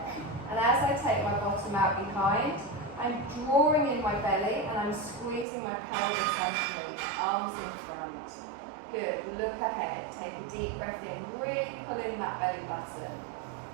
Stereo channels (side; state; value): left; drops out; at 5.5 s